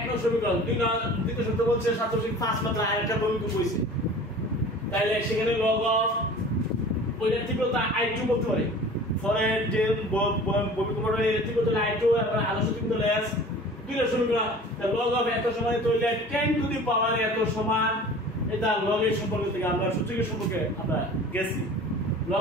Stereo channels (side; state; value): both; normal; correlation 0.42